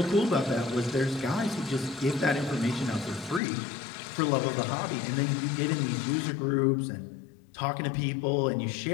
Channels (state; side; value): drops out; right; at 3.4 s